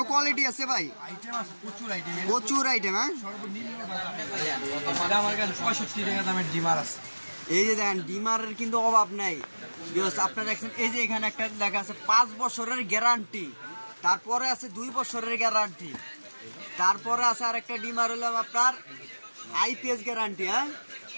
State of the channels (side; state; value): both; inverted; correlation -1.00